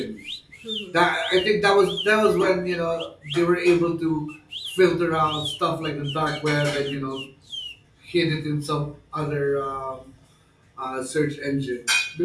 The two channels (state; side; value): identical; both; correlation 1.00